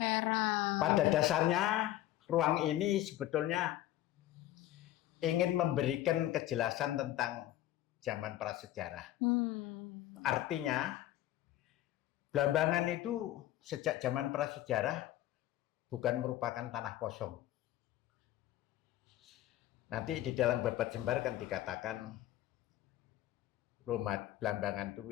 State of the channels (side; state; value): right; quieter; 14.2 dB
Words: Pada dasarnya ruang ini sebetulnya ingin memberikan kejelasan tentang zaman prasejarah. Artinya Blambangan itu sejak zaman prasejarah bukan merupakan tanah kosong. Nanti di dalam Babat Jembar kan dikatakan Blambangan itu